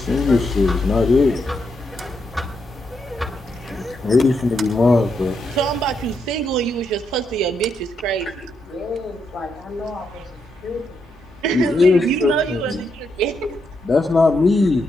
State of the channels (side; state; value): both; normal; correlation 0.80